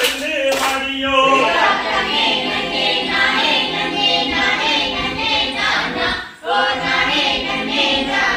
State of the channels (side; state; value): both; identical; correlation 1.00